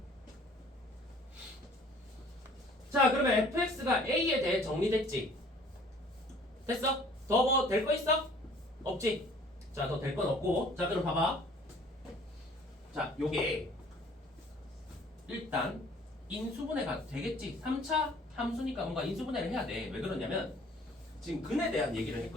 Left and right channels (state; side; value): normal; both; correlation 0.54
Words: 자, 그러면 fx가 A에 대해 정리됐지? 됐어? 더 뭐 될 거 있어? 없지? 자, 더 될 건 없고. 자, 그럼 봐봐. 자, 요게 일단 인수분해가 되겠지. 3차 함수니까 뭔가 인수분해를 해야 돼. 왜 그러냐면 지금 근에 대한 얘기를